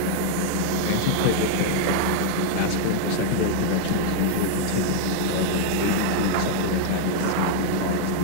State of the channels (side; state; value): both; different; correlation -0.01